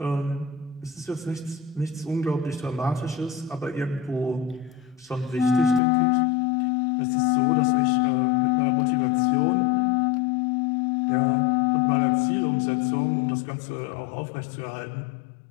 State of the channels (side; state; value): right; drops out; at 5.8 s